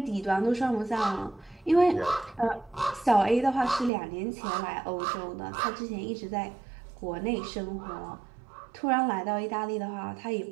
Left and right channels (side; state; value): left; drops out; at 3.9 s